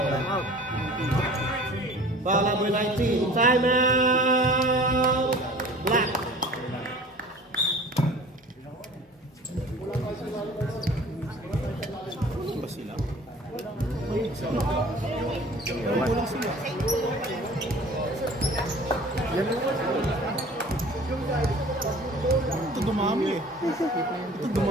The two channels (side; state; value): both; normal; correlation 0.45